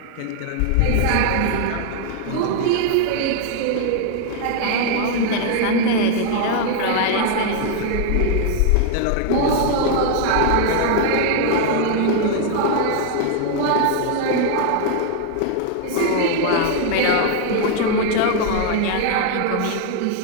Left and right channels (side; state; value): both; different; correlation 0.00